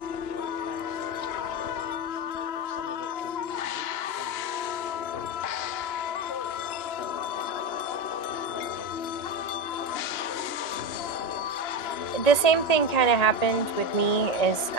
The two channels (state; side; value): late; right; 1.9 ms